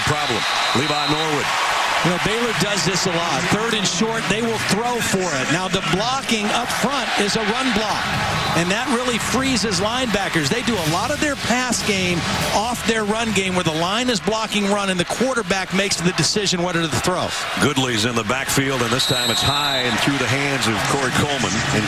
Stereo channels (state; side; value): identical; both; correlation 1.00